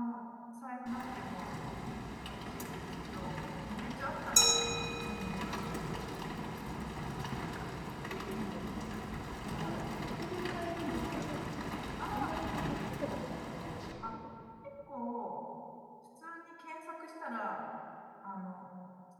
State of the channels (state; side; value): identical; both; correlation 1.00